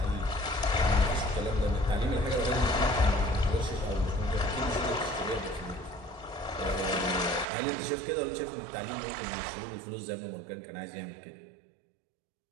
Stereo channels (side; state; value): left; drops out; at 7.5 s